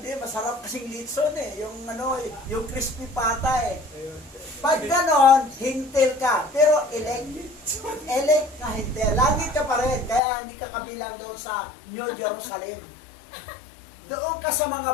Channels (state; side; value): drops out; right; at 10.2 s